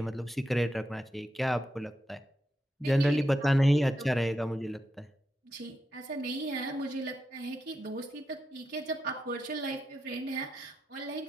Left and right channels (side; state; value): both; normal; correlation 0.86